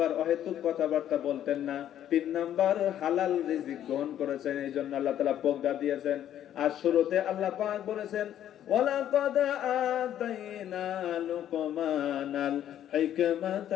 অহেতুক কথাবার্তা বলতেন না। তিন নাম্বার হালাল রিজিক গ্রহণ করেছেন, এই জন্য আল্লাহ তাআলা প্রজ্ঞা দিয়েছেন। আর শুরুতে আল্লাহ পাক বলেছেন, ওয়ালাকাদ আতাইনা লুকমানাল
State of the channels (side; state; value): right; quieter; 11.0 dB